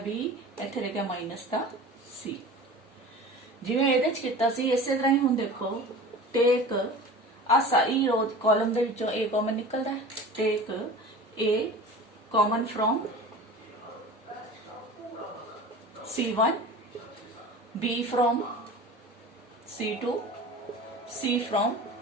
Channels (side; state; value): both; normal; correlation 0.37